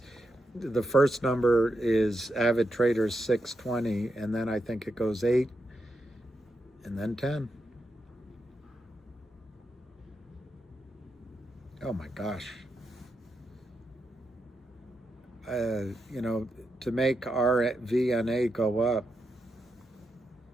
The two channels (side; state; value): both; normal; correlation 0.85